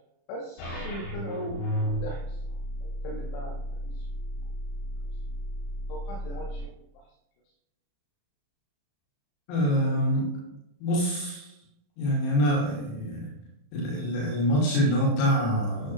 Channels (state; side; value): late; right; 35 ms